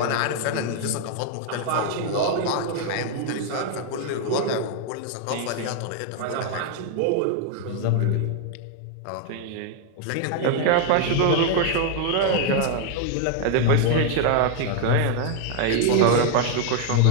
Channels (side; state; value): both; different; correlation 0.00